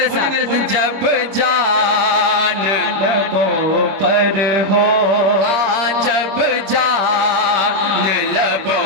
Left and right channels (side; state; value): left; late; 25 ms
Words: साथ, जब जान लबों पर हो, जब जान